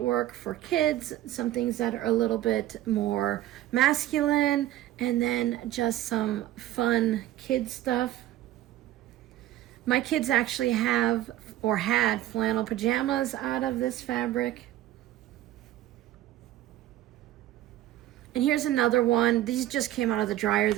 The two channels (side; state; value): left; quieter; 14.0 dB